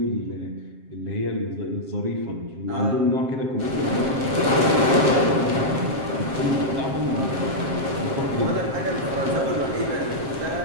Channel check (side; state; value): left; late; 7.5 ms